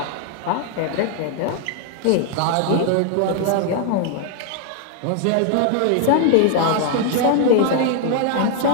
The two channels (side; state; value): both; different; correlation 0.00